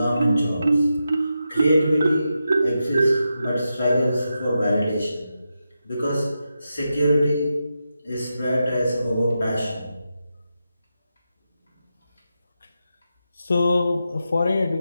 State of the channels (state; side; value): inverted; both; correlation -0.88